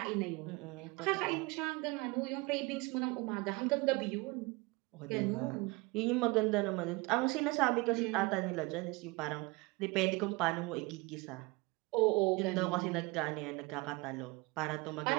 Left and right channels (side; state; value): left; quieter; 24.8 dB